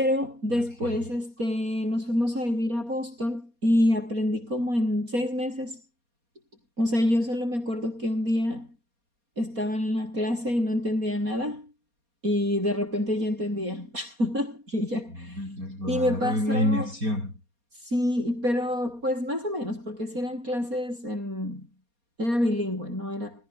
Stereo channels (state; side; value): late; left; 4.2 ms